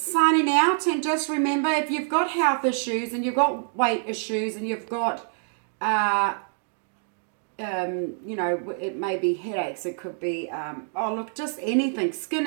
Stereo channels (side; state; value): left; silent; digital silence